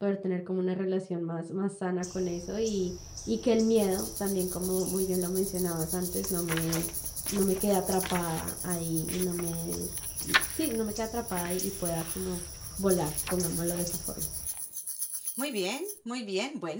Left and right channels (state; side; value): identical; both; correlation 1.00